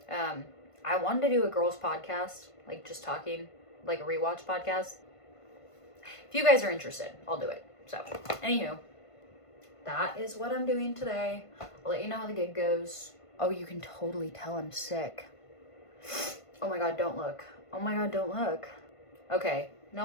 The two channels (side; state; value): right; late; 1.5 ms